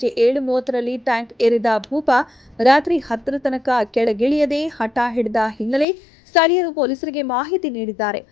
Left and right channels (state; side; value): drops out; right; at 5.9 s